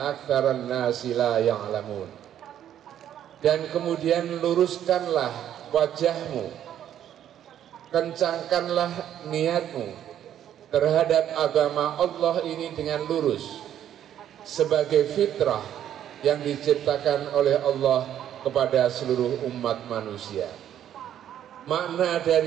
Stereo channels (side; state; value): left; quieter; 10.6 dB